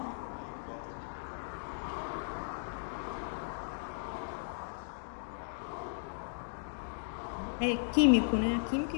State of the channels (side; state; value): right; silent; digital silence